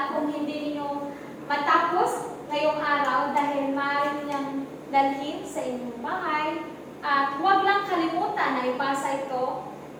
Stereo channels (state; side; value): identical; both; correlation 1.00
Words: kung hindi ninyo matapos ngayong araw dahil maaari niyang dalhin sa inyong bahay. At huwag lang kalimutan na ipasa ito